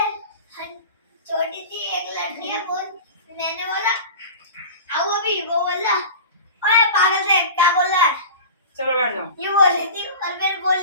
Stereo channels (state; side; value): inverted; both; correlation -0.35